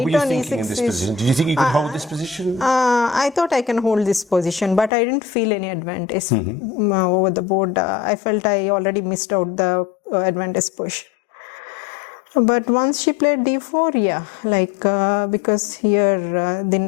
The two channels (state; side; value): drops out; right; at 4.9 s